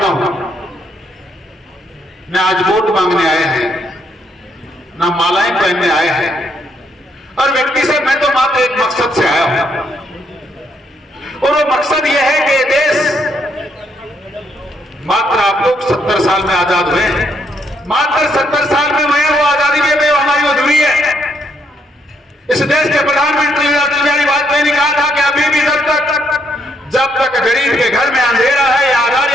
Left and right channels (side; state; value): both; normal; correlation 0.73